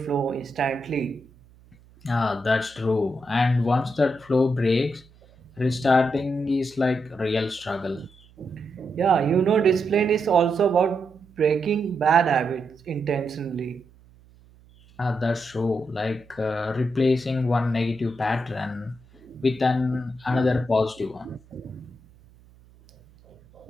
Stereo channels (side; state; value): right; noise; hum, 27 dB below the sound